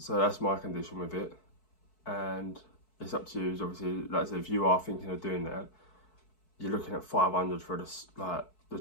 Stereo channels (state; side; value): late; right; 4.6 ms